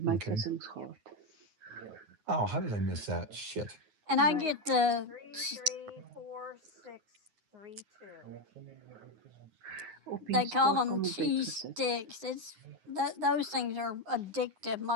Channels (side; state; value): left; late; 9.6 ms